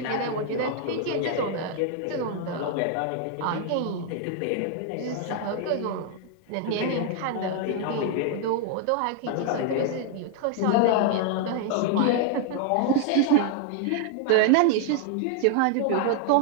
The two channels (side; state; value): both; different; correlation 0.00